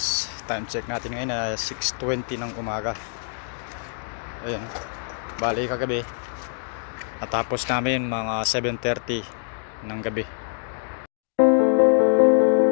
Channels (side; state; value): right; silent; digital silence